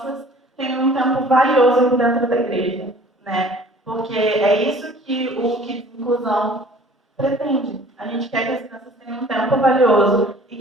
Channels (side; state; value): both; normal; correlation 0.51